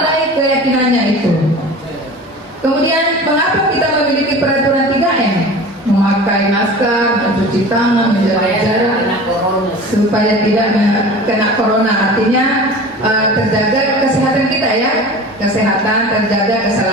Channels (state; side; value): normal; both; correlation 0.38